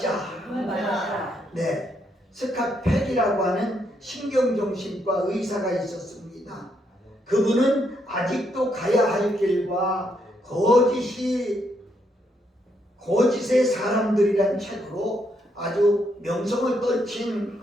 네, 스캇 팩이라고 하는 신경정신과 의사가 있었습니다. 그분은 아직도 가야 할 길과 거짓의 사람들이란 책으로 아주 명성을 떨친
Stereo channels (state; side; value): normal; both; correlation 0.76